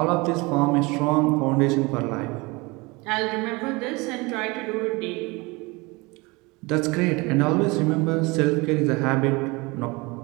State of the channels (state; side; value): quieter; left; 25.0 dB